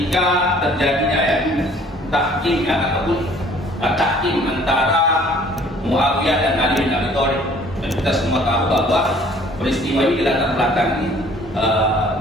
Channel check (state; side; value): normal; both; correlation 0.55